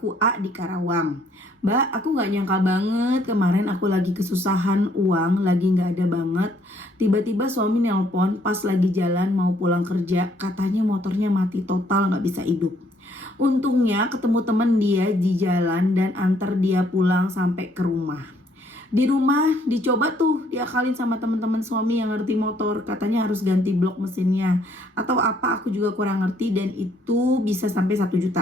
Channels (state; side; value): normal; both; correlation 0.66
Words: A di Karawang. Mbak, aku gak nyangka banget. Kemarin aku lagi kesusahan uang, lagi gak ada banget. Tiba-tiba suami nelpon pas lagi jalan mau pulang kerja. Katanya motornya mati total, gak bisa hidup. Untungnya ketemu temen dia di jalan dan antar dia pulang sampai ke rumah. Di rumah dicoba tuh diakalin sama teman-teman suami yang ngerti motor, katanya harus ganti blok mesinnya atau apa, aku juga kurang ngerti, dan itu bisa sampai 1